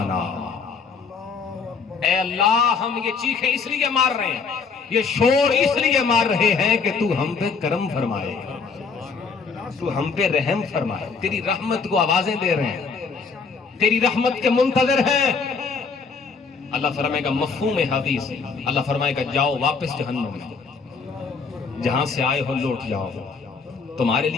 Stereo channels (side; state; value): right; quieter; 5.1 dB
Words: اے اللہ ہم یہ چیخیں اس لیے مار رہے ہیں، یہ شور اس لیے مار رہے ہیں کہ تو ہم پہ کرم فرمائے، تو ہم پہ رحم فرمائے، تیری رحمت کو آوازیں دے رہے ہیں، تیری رحمت کے منتظر ہیں۔ اللہ فرمائے گا مفہوم حدیث، اللہ فرمائے گا جاؤ واپس جہنم میں، جہاں سے آئے ہو لوٹ جاؤ، تمہارے